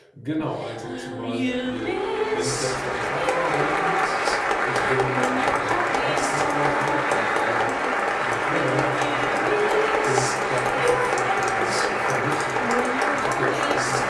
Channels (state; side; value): identical; both; correlation 1.00